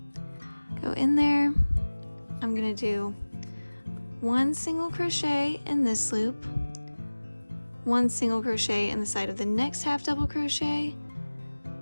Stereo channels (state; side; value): inverted; both; correlation -1.00